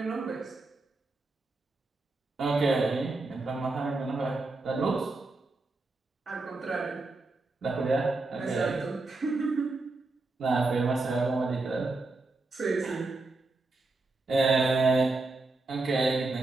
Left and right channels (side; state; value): left; quieter; 3.3 dB